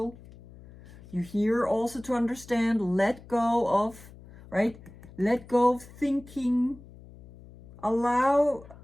You're here also to understand, let go of, right? Let go of thinking. Allow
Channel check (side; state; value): left; noise; hum, 20 dB below the sound